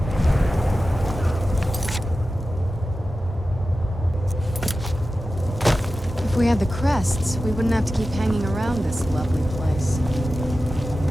If we had the crests, we wouldn't have to keep hanging around this lovely place.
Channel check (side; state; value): both; normal; correlation 0.94